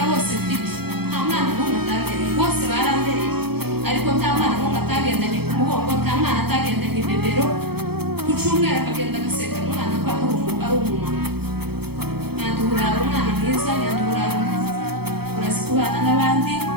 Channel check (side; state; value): left; late; 0.96 ms